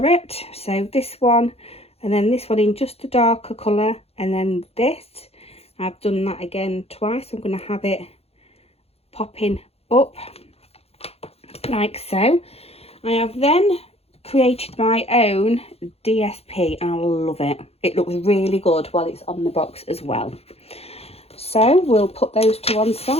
so this one, and then this one in just a darker colour, and then this. I've done that again twice. I'm going to have it popping up like so. I have then created my own DSP and I love it. It looks really good while it's on the box as well. So we'll put those to one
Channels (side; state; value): right; late; 0.29 ms